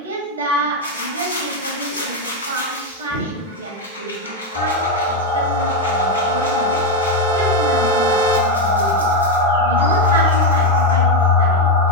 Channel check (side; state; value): both; normal; correlation 0.06